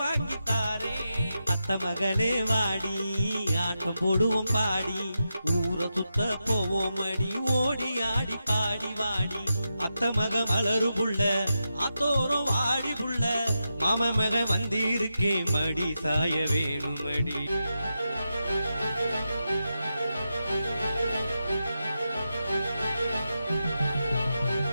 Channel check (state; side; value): inverted; both; correlation -0.88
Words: தாரே அத்த மகளே வாடி ஆட்டம் போடுவோம் பாடி ஊரை சுத்த போவோம் அடி ஓடி ஆடி பாடி வாடி அத்த மக மலரு புள்ள அத்தோரம் வாடி புள்ள மாம மக வந்திருக்கே மடி சாய வேணுமடி